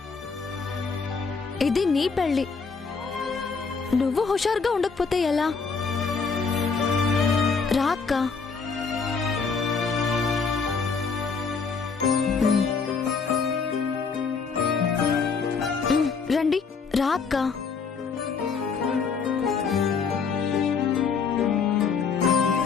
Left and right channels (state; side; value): quieter; right; 5.3 dB